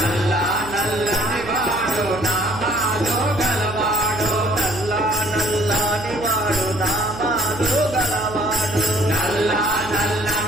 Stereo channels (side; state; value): right; noise; hum, 12 dB below the sound